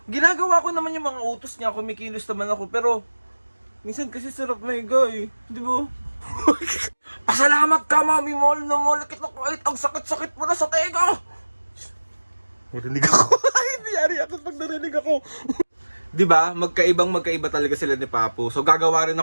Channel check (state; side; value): inverted; both; correlation -1.00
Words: ginagawa ko naman yung mga utos niya, kumikilos naman ako, pero minsan kasi sarap maiga eh, di ba? Pasalamat ka mami, mall na mall kita kahit ang sakit-sakit mo na sa tega. Narinig ako. Hindi yari ako pag narinig ako. Diba? Magkaiba talaga sila ni Papo. So gagawa rin